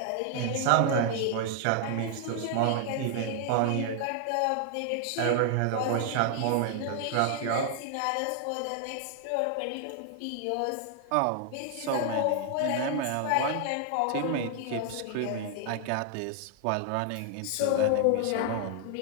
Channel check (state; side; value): different; both; correlation 0.00